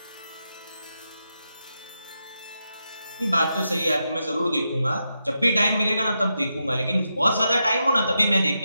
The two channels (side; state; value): both; inverted; correlation -0.86